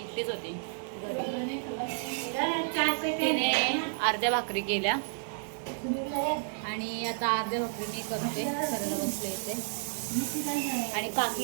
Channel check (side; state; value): left; silent; digital silence